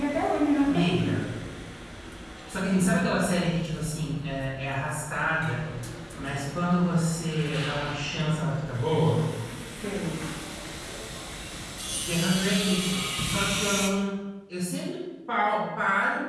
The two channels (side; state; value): both; identical; correlation 1.00